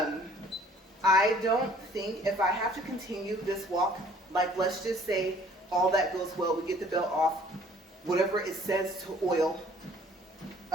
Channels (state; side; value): normal; both; correlation 0.56